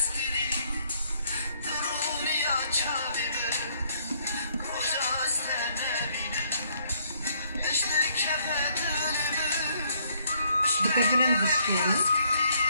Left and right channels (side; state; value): both; inverted; correlation -0.67